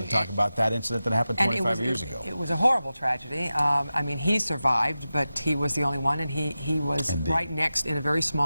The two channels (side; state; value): both; inverted; correlation -0.94